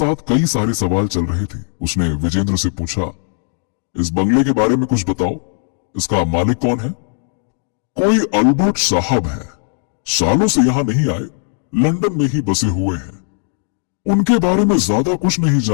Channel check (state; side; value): silent; right; digital silence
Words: कई सारे सवाल चल रहे थे। उसने विजेंद्र से पूछा, इस बंगले के बारे में कुछ बताओ, इसका मालिक कौन है? कोई अल्बर्ट साहब है, सालों से यहाँ नहीं आए, लंदन में ही बसे हुए हैं। उनके बारे में ज्यादा कुछ नहीं